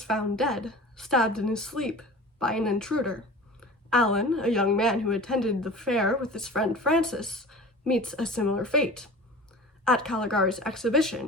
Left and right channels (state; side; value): normal; both; correlation 0.38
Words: found dead, stabbed in his sleep by an intruder. Alan, a young man who attended the fair with his friend Francis, meets a similar fate. At Caligari's